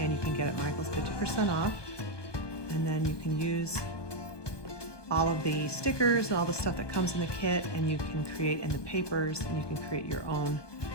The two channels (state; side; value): late; right; 1.2 ms